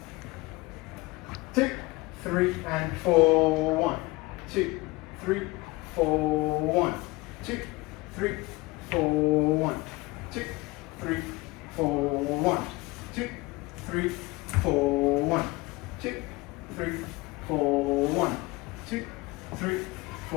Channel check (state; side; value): quieter; right; 22.6 dB